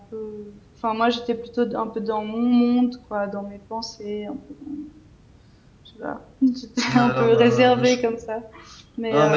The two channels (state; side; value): identical; both; correlation 1.00